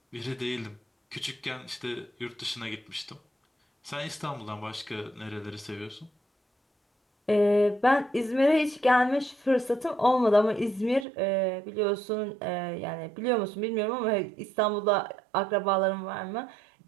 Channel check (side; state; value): left; drops out; at 11.1 s